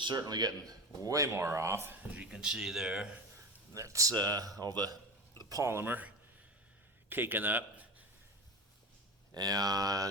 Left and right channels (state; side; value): normal; both; correlation 0.26